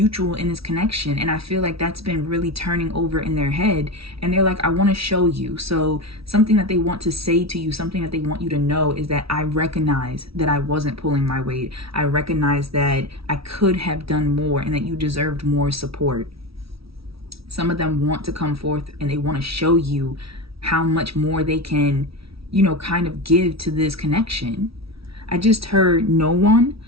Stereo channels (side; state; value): left; late; 0.76 ms